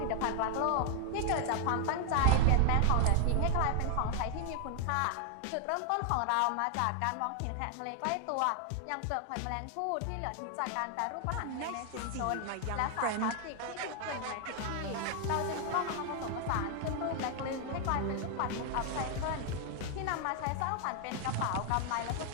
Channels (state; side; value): different; both; correlation 0.00